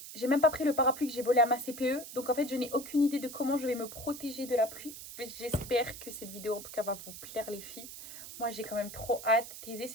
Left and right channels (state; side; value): noise; right; hiss, 12 dB below the sound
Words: J'ai même pas pris le parapluie que j'ai volé à ma CPE. Donc en fait je n'ai aucune idée de comment je vais me protéger de la pluie. J'espère que cette vidéo en tout cas va vous plaire les filles. Moi, j'ai quand même trop hâte. Thésée,